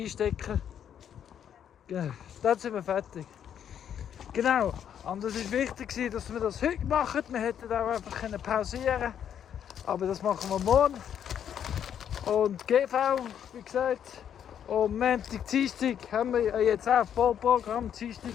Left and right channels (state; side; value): quieter; right; 9.1 dB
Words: Genau, dann sind wir fertig. Genau, und es war wichtig, dass wir das heute machen. Wir hätten auch einfach pausieren können. Aber das machen wir morgen. Und GV, wie gesagt. Und Montag, Dienstag haben wir jetzt auch Vollprogramm.